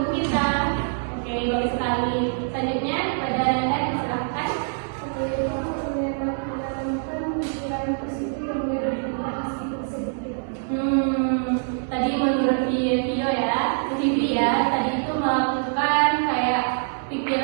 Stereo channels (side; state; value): left; silent; 62 dB below the other